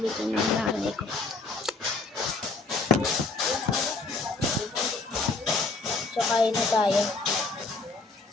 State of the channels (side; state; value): right; quieter; 3.7 dB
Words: ng nanay ko. So, kain na tayo.